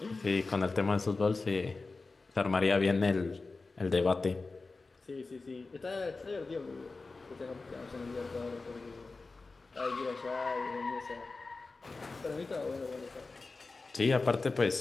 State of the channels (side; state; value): right; quieter; 3.8 dB